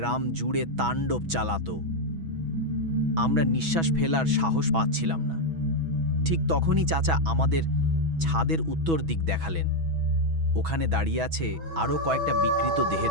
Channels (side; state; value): left; late; 6.1 ms